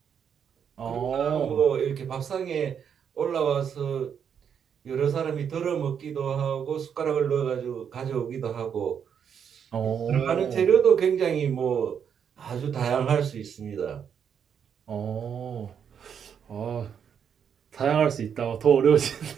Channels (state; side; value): quieter; left; 7.7 dB